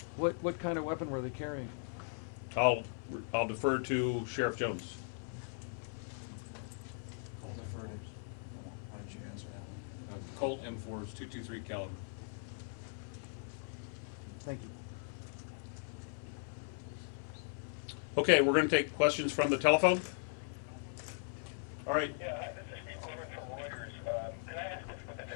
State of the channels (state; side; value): silent; right; digital silence